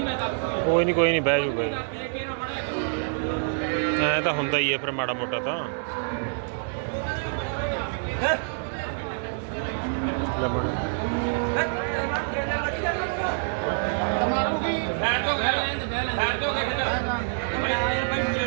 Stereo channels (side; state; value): left; silent; digital silence